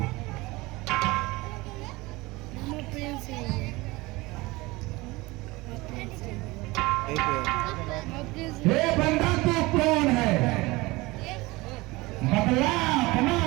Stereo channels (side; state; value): left; quieter; 22.0 dB